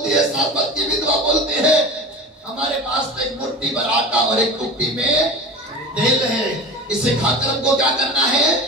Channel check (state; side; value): normal; both; correlation 0.32